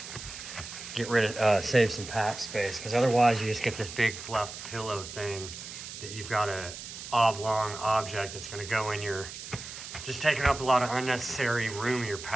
get rid of, save some pack space, because otherwise you just get this big fluff pillow thing that you've got a oblong object that's going to go in your, just taking up a lot of unnecessary room in your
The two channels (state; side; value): noise; right; hiss, 11 dB below the sound